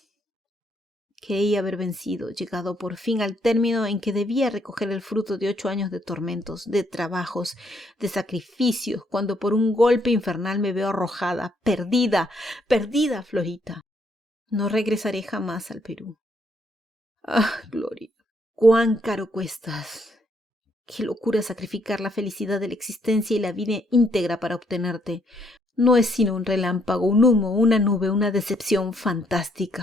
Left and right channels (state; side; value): normal; both; correlation 0.71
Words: Creí haber vencido, llegado por fin al término en que debía recoger el fruto de 8 años de tormentos, de trabajos, de sacrificios, cuando por un golpe infernal me veo arrojada, perdida, perdida, Florita. No regresaré jamás al Perú. Ah, Gloria, cuán caro cuestas. Qué locura sacrificar la felicidad de la existencia y la vida íntegra para obtenerte. No es sino un relámpago, un humo, una nube, una decepción